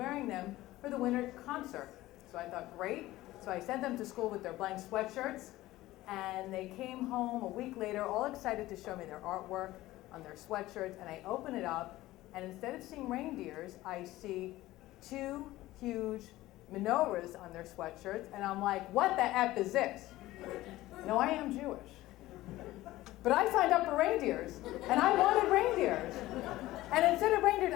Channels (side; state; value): right; quieter; 16.8 dB